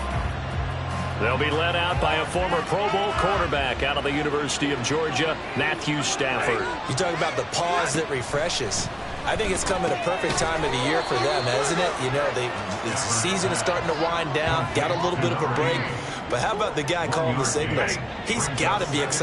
They'll be led out by a former Pro Bowl quarterback out of the University of Georgia, Matthew Stafford. You talk about the pause that refreshes. I think it's coming a perfect time of the year for them, isn't it? You know, the season is starting to wind down, got a little bit of a break. But how about the guy calling the signals? He's got to be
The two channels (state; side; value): identical; both; correlation 1.00